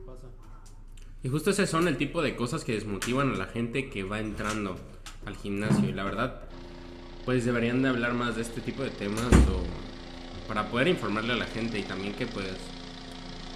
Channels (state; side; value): identical; both; correlation 1.00